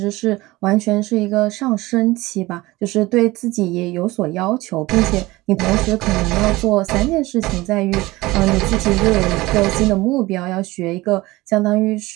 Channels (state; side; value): quieter; left; 20.0 dB